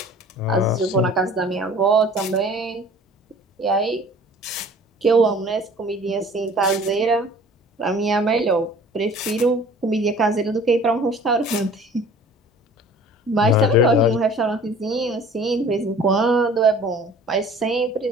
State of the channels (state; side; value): normal; both; correlation 0.48